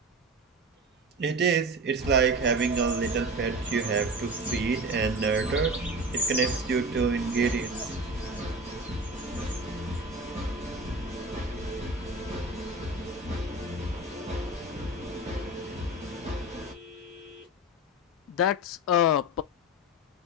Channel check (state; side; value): normal; both; correlation 0.30